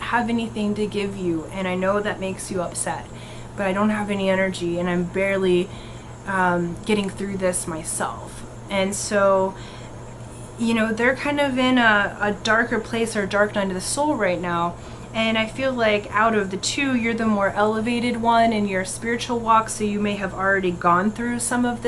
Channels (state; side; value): identical; both; correlation 1.00